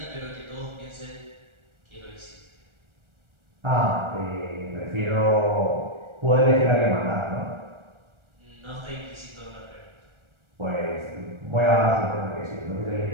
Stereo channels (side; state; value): left; late; 1.4 ms